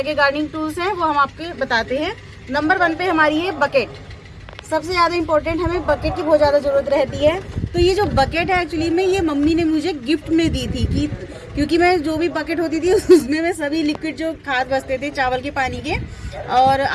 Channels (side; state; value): both; identical; correlation 1.00